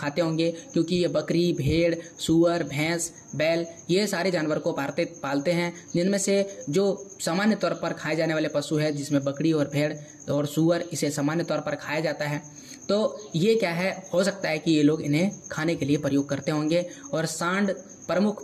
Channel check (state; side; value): identical; both; correlation 1.00